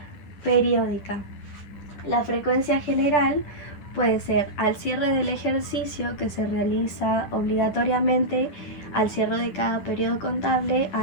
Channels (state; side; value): late; right; 10 ms